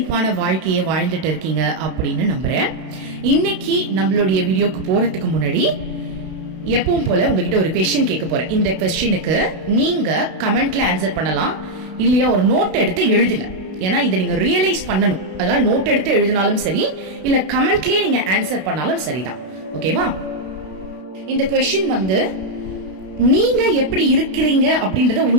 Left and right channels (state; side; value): late; left; 32 ms